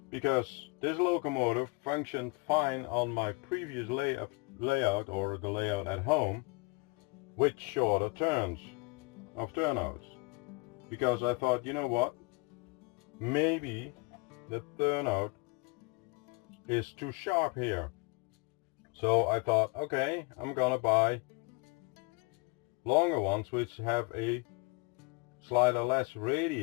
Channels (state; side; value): quieter; right; 27.7 dB